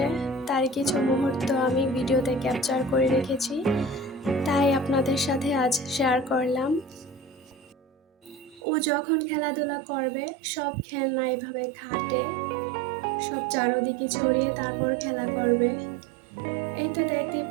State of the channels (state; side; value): drops out; left; at 8.6 s